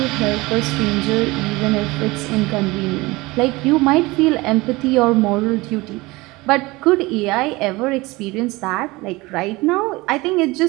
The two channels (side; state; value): left; quieter; 21.9 dB